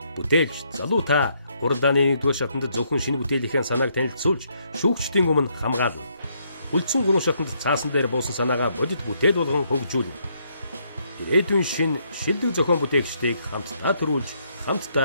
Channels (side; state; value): both; inverted; correlation -0.73